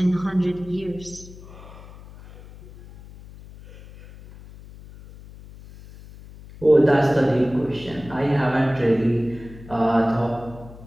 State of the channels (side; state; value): left; noise; hum, 18 dB below the sound